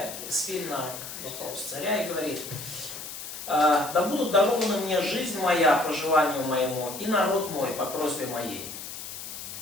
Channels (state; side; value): noise; left; hiss, 10 dB below the sound